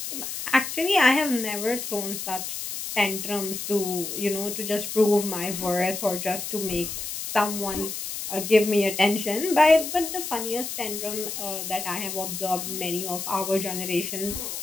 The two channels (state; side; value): noise; left; hiss, 6 dB below the sound